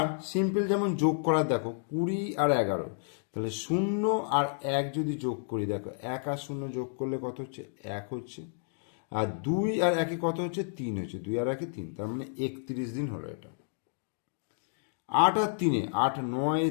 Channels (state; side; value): silent; right; digital silence